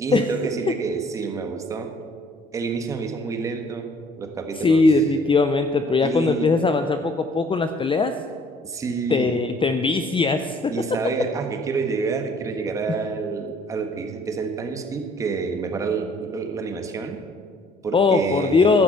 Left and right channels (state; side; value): normal; both; correlation 0.59